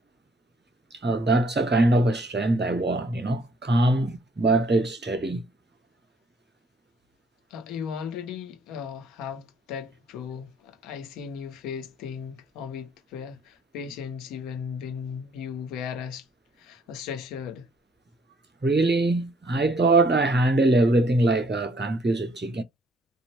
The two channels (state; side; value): normal; both; correlation 0.64